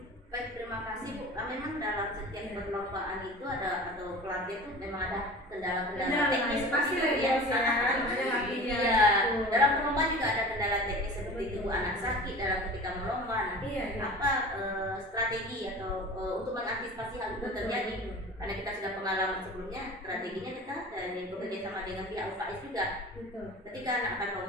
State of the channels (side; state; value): both; normal; correlation 0.38